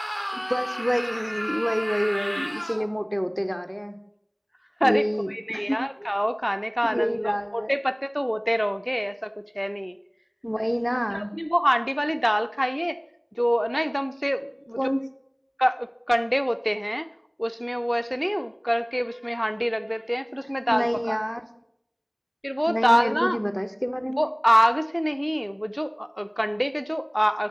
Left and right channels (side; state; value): both; identical; correlation 1.00